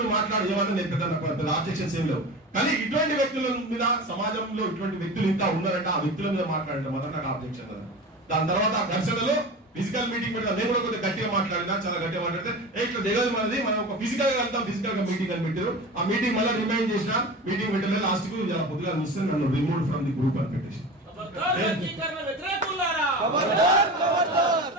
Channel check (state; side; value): normal; both; correlation 0.31